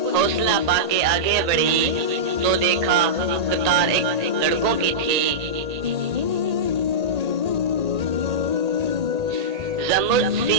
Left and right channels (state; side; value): late; left; 1.8 ms